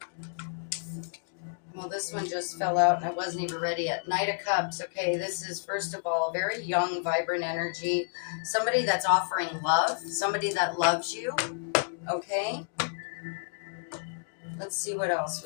Well, this one just fell out and I wasn't even ready yet. Knight of Cups. Okay, this is, first of all, a very young, vibrant energy. Somebody that's offering love. Somebody that loves you. Okay? Let's see what else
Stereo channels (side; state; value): right; silent; digital silence